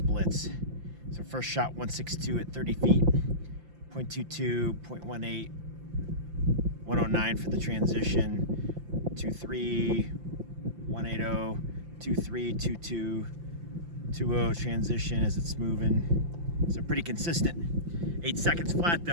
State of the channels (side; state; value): left; late; 5.8 ms